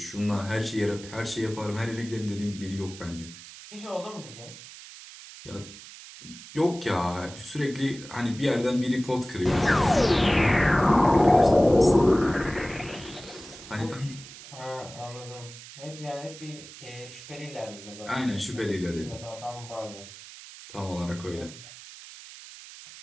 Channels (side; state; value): right; noise; hiss, 16 dB below the sound